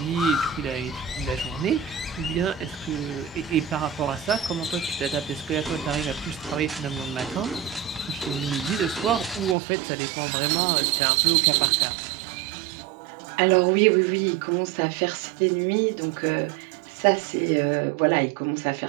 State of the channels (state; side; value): drops out; left; at 9.6 s